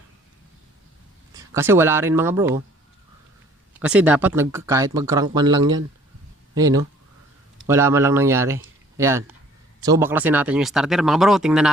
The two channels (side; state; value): both; normal; correlation 0.56